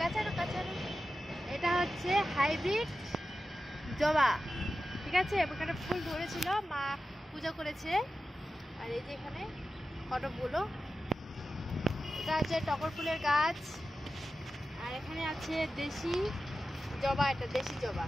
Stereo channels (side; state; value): both; normal; correlation 0.93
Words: কাঁচানো, এটা হচ্ছে হাইব্রিড জবা, ঠিক আছে। এখানে ফুল ধরেছিল, মা পূজা করেছে। আর এই যে এখানে কটকগুলো, এটা হচ্ছে টগর ফুলের গাছ। আর এখানে আছে দেশি জবা, এটা দেশি জবা,